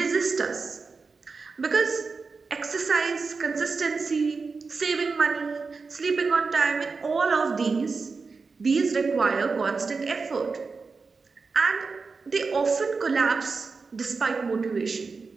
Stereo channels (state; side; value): quieter; left; 4.5 dB